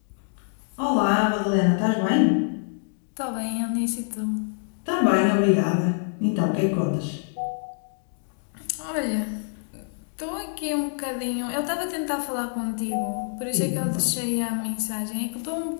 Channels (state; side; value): silent; right; digital silence